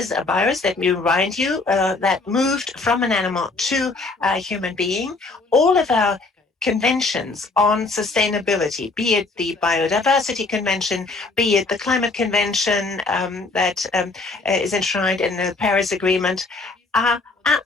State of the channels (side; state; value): right; quieter; 3.7 dB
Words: a virus, let me remind you, that moved from an animal to a human being. All of our conventions on sustainability, be it the Biodiversity Convention, be it the Climate Convention that is enshrined in the Paris Agreement, are